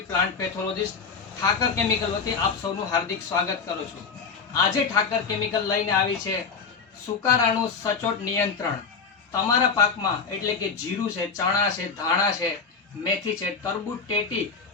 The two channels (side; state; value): right; quieter; 5.4 dB